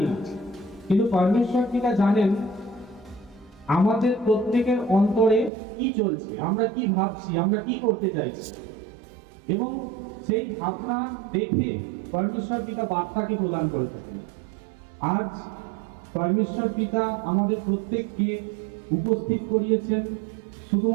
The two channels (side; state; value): left; drops out; at 5.5 s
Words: না, কিন্তু পরমেশ্বর পিতা জানেন আমাদের প্রত্যেকের অন্তরে কি চলছে, আমরা কি ভাবছি, আমরা কি করতে চাইছি, এবং সেই ভাবনা দেখে পরমেশ্বর পিতা বার্তাকে প্রদান করে থাকেন। আজ পরমেশ্বর পিতা আমাদের প্রত্যেককে উপস্থিত করিয়েছেন,